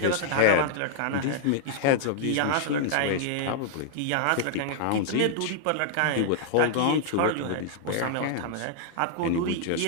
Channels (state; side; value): different; both; correlation -0.01